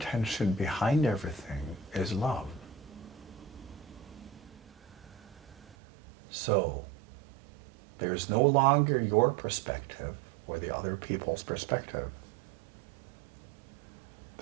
behind everything is love. So, there's no longer your perspective or the other people's perspective.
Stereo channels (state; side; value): drops out; left; at 5.8 s